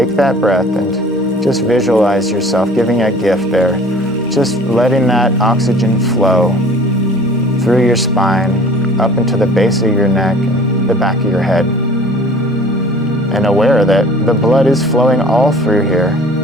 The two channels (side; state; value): both; normal; correlation 0.48